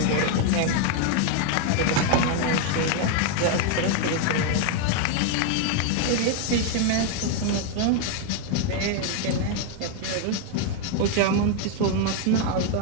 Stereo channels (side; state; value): both; different; correlation 0.01